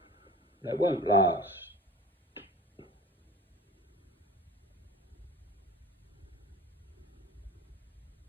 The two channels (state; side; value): normal; both; correlation 0.39